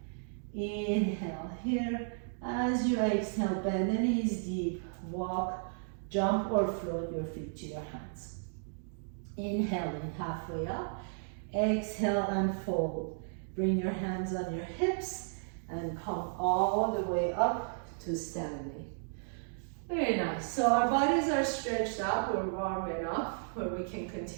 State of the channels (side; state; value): left; silent; digital silence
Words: Inhale here. As you exhale, bend the knees deep, walk, jump or float your feet to your hands. Inhaling halfway up, exhale and fold. Bring your hands on your hips and come all the way up to standing. Very nice. So our bodies are stretched out, we're warm enough where we can